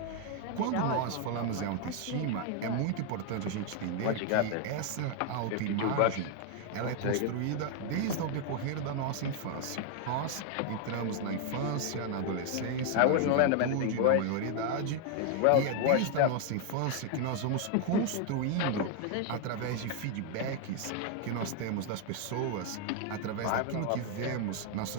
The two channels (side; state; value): both; different; correlation 0.00